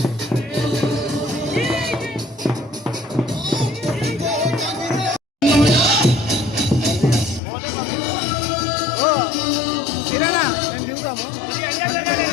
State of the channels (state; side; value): drops out; right; at 7.4 s